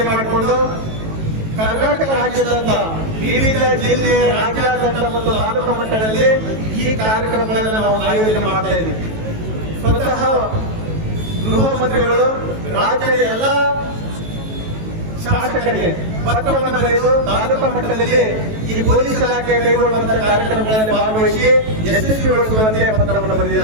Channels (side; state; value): left; late; 18 ms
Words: ಮಾಡಿಕೊಂಡು ಕರ್ನಾಟಕ ರಾಜ್ಯದಂತ ವಿವಿಧ ಜಿಲ್ಲೆ, ರಾಜ್ಯಾದ್ಯಂತ ಮತ್ತು ತಾಲೂಕು ಮಟ್ಟದಲ್ಲಿ ಈ ಕಾರ್ಯಕ್ರಮಗಳನ್ನು ನಾವು ಆಯೋಜನೆ ಮಾಡ್ತಾ ಇದ್ದೀವಿ. ಸ್ವತಃ ಗೃಹ ಮಂತ್ರಿಗಳು ರಾಜ್ಯದ ಎಲ್ಲ ಶಾಸಕರಿಗೆ ಪತ್ರವನ್ನು ಬರೆದು ತಾಲೂಕು ಮಟ್ಟದಲ್ಲಿ ಈ ಪೊಲೀಸ್ ಇಲಾಖೆ ಕೈಗೊಳ್ಳುವಂತಹ ಕಾರ್ಯಕ್ರಮಗಳಲ್ಲಿ ಭಾಗವಹಿಸಿ ಯಶಸ್ವಿಗೊಳಿಸುವಂತೆ ಪತ್ರವನ್ನು